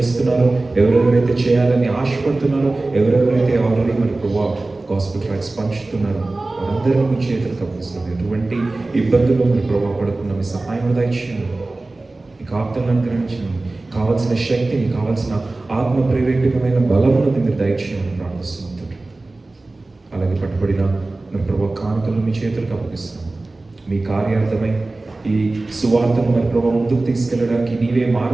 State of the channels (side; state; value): left; quieter; 3.1 dB